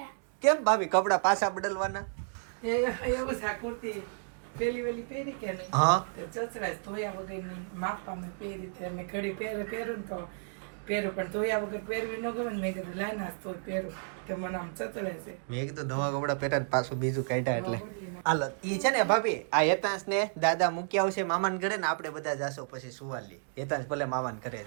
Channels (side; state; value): left; silent; digital silence